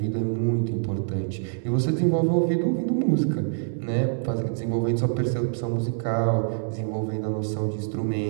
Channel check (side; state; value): left; silent; digital silence